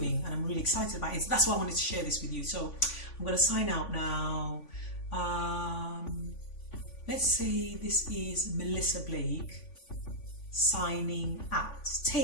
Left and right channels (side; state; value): right; late; 3.5 ms